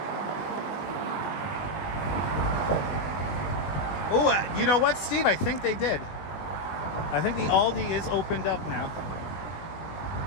Oh, you know what, Steve? I think they did. I think the Aldi is opened up now.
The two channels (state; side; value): late; right; 20 ms